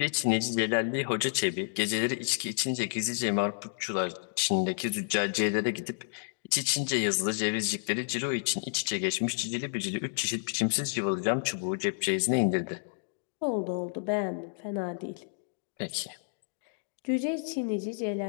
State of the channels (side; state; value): right; silent; digital silence